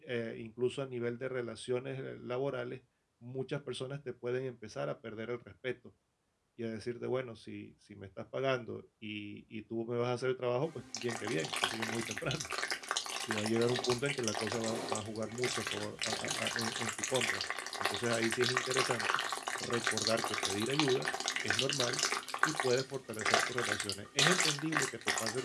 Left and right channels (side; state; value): both; identical; correlation 1.00